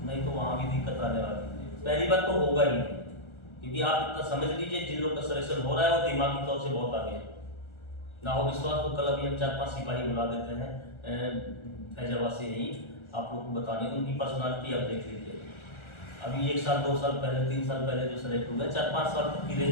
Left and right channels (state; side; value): late; right; 1.4 ms